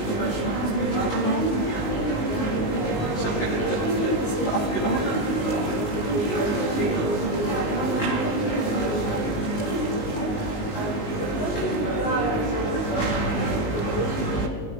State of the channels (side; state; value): right; late; 19 ms